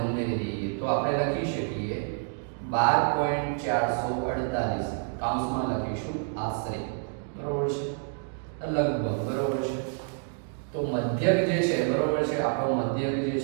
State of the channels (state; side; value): silent; left; 59 dB below the other